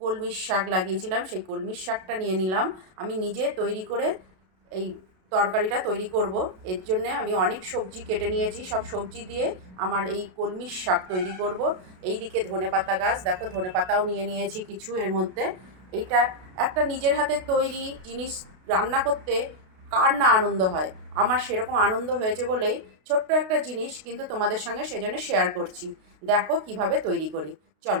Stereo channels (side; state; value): left; late; 32 ms